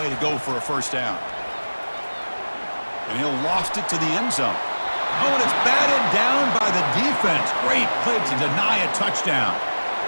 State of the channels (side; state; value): both; inverted; correlation -1.00